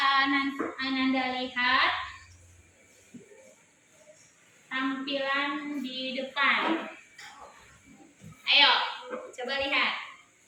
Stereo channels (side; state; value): both; identical; correlation 1.00